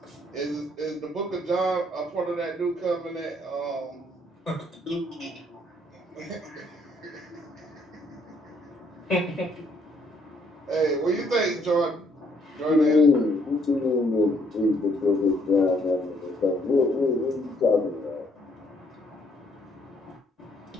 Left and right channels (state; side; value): normal; both; correlation 0.68